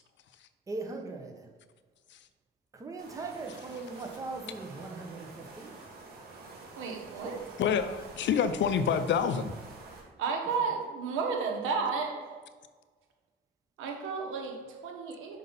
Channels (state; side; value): normal; both; correlation 0.15